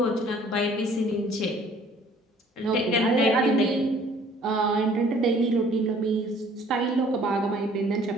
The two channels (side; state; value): both; normal; correlation 0.56